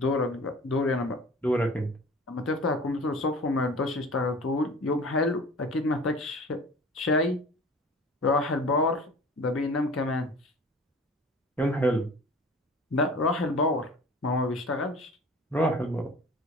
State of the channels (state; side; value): normal; both; correlation 0.42